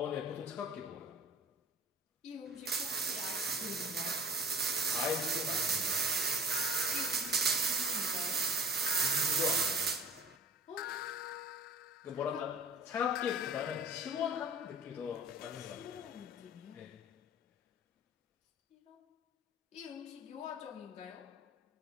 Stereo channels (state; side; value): normal; both; correlation 0.47